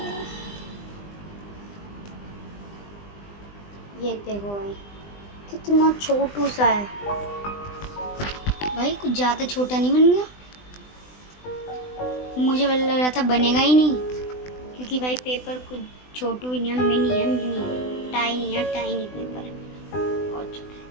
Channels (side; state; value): right; late; 20 ms